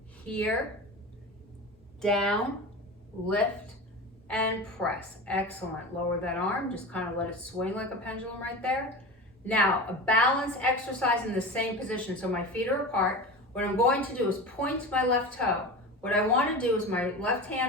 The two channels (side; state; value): both; normal; correlation 0.29